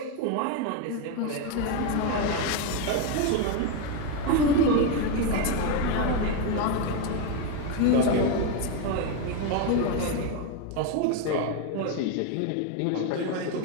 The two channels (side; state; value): both; different; correlation 0.02